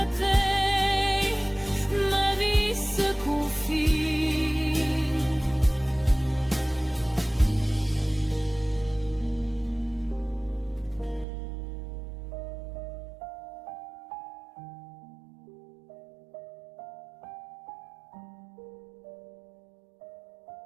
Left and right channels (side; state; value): left; drops out; at 11.2 s